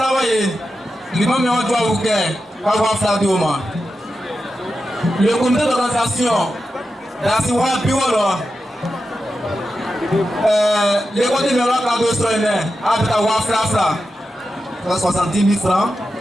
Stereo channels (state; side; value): normal; both; correlation 0.90